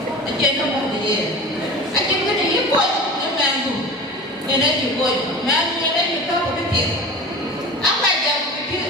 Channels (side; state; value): both; normal; correlation 0.34